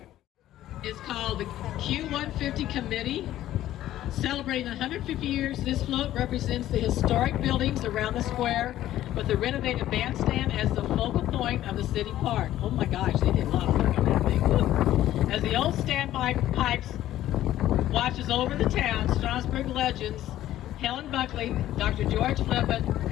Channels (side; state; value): right; quieter; 13.5 dB